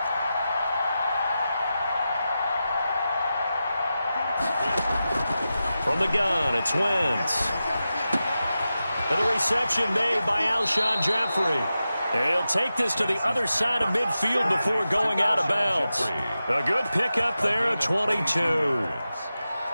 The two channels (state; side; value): inverted; both; correlation -0.92